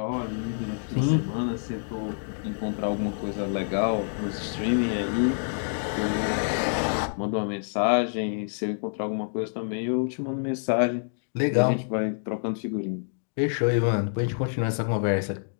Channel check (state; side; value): silent; right; digital silence